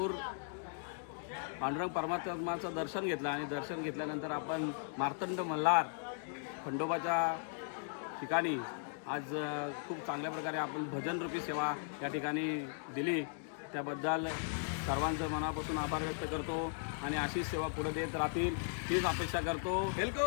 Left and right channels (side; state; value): right; silent; digital silence